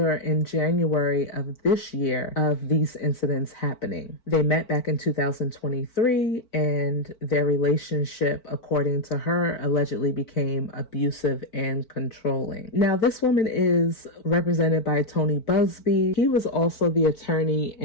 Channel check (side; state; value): right; late; 4.5 ms